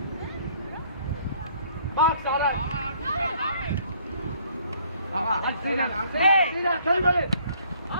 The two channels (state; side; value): inverted; both; correlation -0.61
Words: Bak Sara! Aha! Hey! Sinan kalbeli!